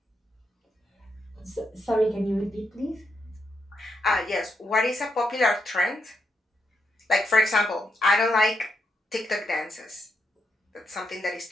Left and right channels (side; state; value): both; normal; correlation 0.82